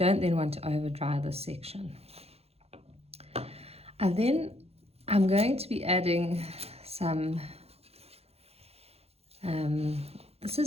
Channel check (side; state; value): left; late; 0.29 ms